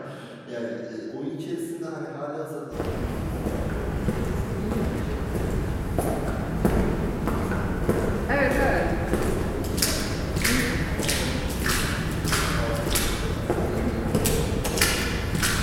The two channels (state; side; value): identical; both; correlation 1.00